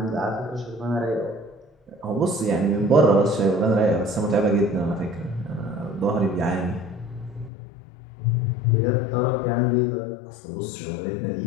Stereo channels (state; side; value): drops out; right; at 7.5 s